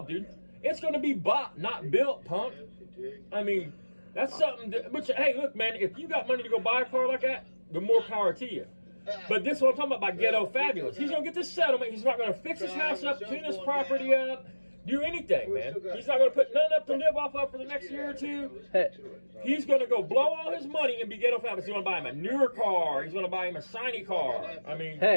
dude. It's going to be bought, not built, punk. I mean, that's something that, which, hey, look, man, if you got money to go buy a car like that, the more power to you. But this is what I'm talking about by ghetto fabulous. He's going to get this settlement. He's not going to fix his house up, clean his property up, do anything, man. He's not going to put none up to live off of for the next year or two. He's going to go blow all his money and be ghetto fabulous. He's going to buy him a newer car. He's going to buy him a shiny car. I mean,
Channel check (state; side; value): inverted; both; correlation -1.00